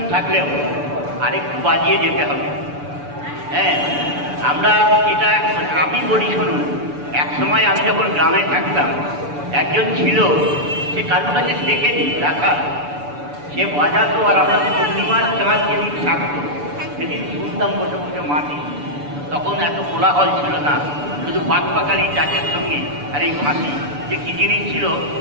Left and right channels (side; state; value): left; late; 6.9 ms